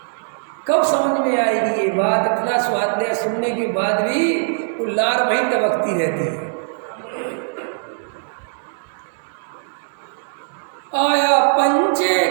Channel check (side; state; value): left; silent; digital silence